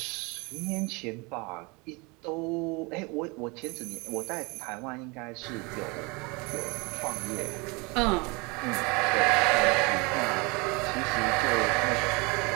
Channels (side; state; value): left; quieter; 28.0 dB